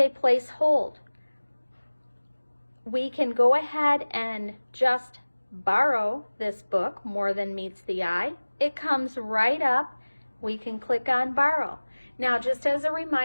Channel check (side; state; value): both; inverted; correlation -1.00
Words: place hold. We can go ahead and just borrow this book, More Than Meets the Eye. It comes right up. We can click on borrow. Now, just as a